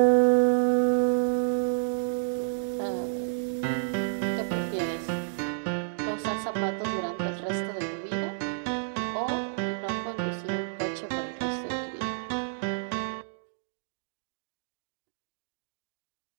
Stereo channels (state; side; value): silent; left; digital silence